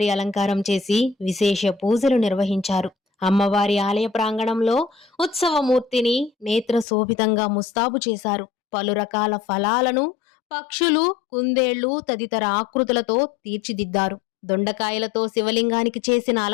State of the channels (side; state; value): right; drops out; at 6.9 s